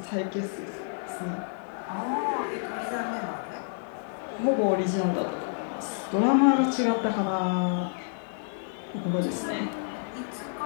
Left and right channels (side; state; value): right; silent; digital silence